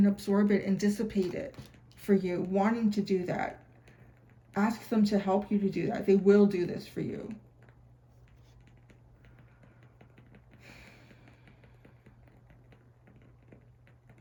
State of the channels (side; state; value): both; identical; correlation 1.00